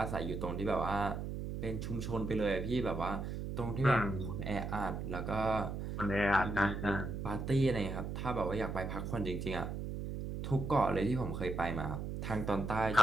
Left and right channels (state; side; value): noise; right; hum, 4 dB below the sound